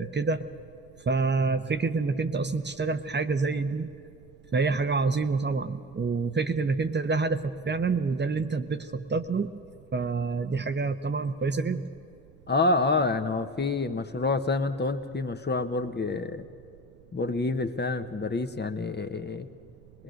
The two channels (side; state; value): right; noise; rumble, 25 dB below the sound